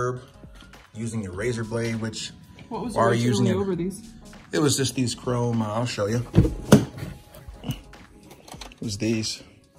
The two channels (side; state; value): both; identical; correlation 1.00